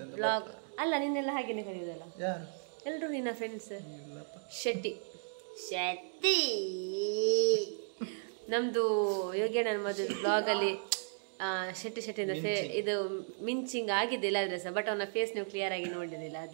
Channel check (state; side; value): silent; left; digital silence